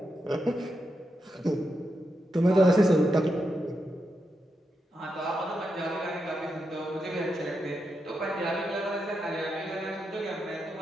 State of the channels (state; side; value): normal; both; correlation 0.86